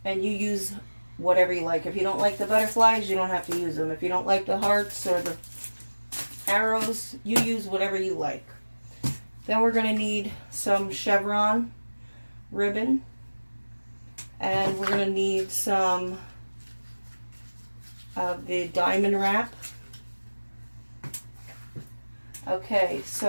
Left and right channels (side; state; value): both; inverted; correlation -1.00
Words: and you use whatever you like. If you don't like the butterflies, you don't have to use them. If you don't like the hearts or the arrows, you use whatever you like. Then we're going to need some chevron ribbon, and we're going to need some of the diamond wrap. Okay,